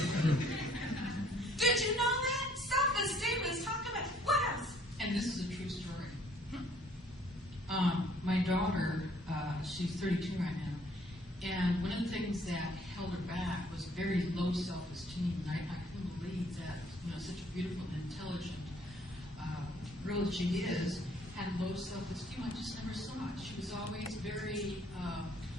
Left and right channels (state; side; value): normal; both; correlation 0.61